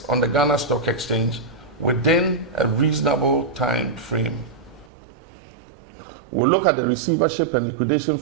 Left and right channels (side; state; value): left; drops out; at 4.9 s